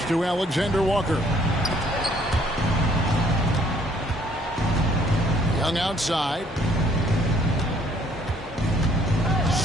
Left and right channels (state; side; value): normal; both; correlation 0.62